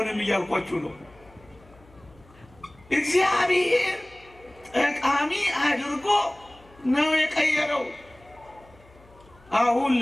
እያልኳችሁ ነው። እግዚአብሔር ጠቃሚ አድርጎ ነው የቀየረው። አሁን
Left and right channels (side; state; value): left; noise; hum, 27 dB below the sound